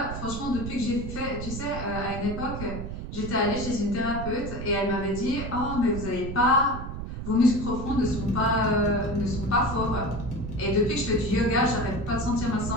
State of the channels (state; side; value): noise; right; rumble, 7 dB below the sound